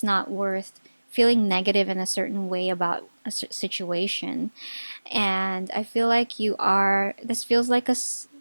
not worth feeling negative in a certain way about a situation. And I feel like this feels like a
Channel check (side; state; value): both; inverted; correlation -1.00